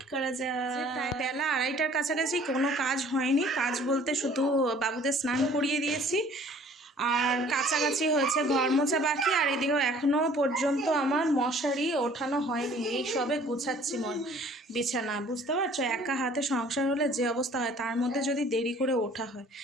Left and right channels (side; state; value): both; normal; correlation 0.53